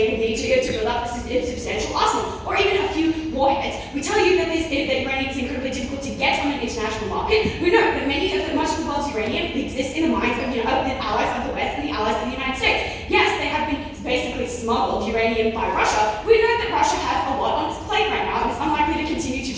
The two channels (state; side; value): identical; both; correlation 1.00